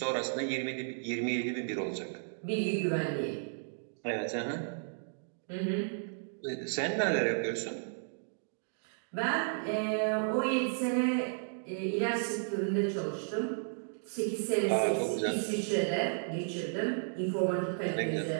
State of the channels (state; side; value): silent; left; digital silence